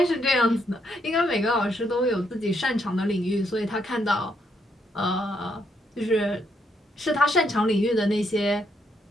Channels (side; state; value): both; normal; correlation 0.75